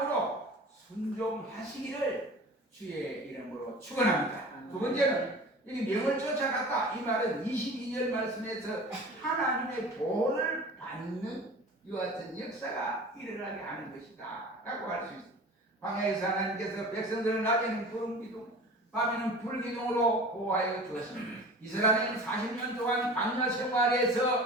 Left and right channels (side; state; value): both; normal; correlation 0.39